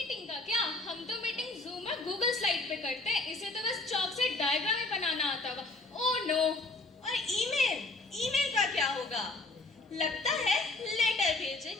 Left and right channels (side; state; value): right; quieter; 3.1 dB